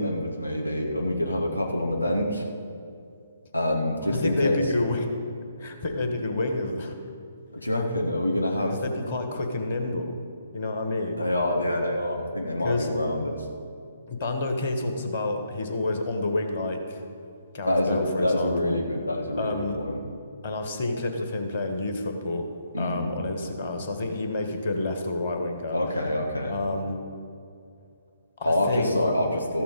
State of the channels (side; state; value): both; inverted; correlation -0.79